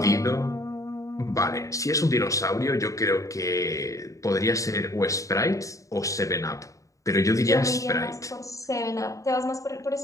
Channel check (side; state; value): right; late; 0.16 ms